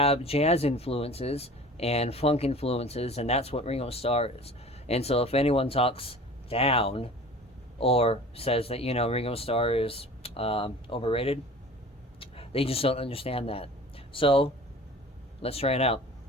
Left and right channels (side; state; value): both; normal; correlation 0.42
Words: jazz influences and funk influences, and that's what Ringo Starr is. And so if anyone talks down or says that, Ringo Starr is overrated, they just don't understand that. So let's try it out.